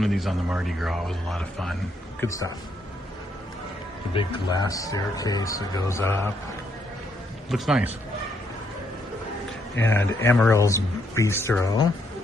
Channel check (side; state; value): both; normal; correlation 0.74